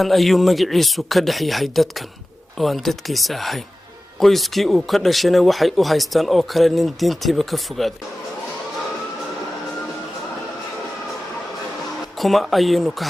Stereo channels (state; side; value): normal; both; correlation 0.95